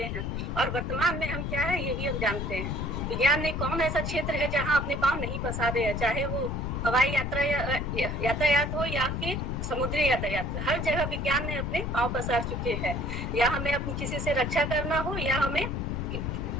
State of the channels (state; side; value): noise; left; rumble, 2 dB below the sound